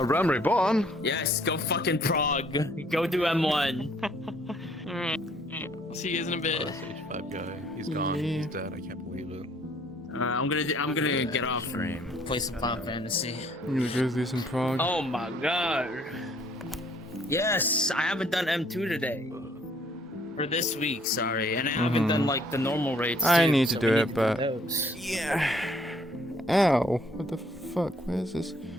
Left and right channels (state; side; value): normal; both; correlation 0.62